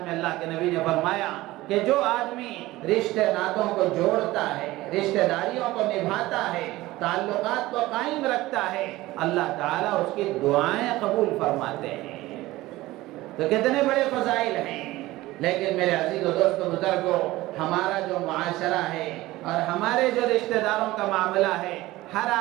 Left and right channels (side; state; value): left; quieter; 18.0 dB